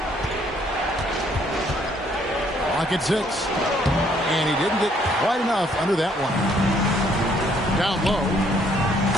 Clock at 6. And he didn't get quite enough under that one. Down low.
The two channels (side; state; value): both; normal; correlation 0.66